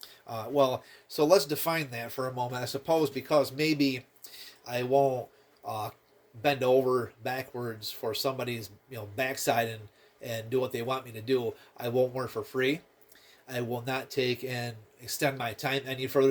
So let's define that for a moment. I suppose because maybe I won't bend over backwards for somebody's backside and do what they want me to do. I won't work for free. I will not take and extend my time any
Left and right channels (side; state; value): both; identical; correlation 1.00